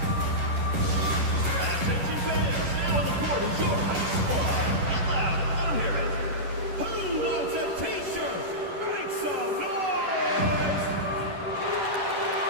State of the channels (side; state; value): left; late; 11 ms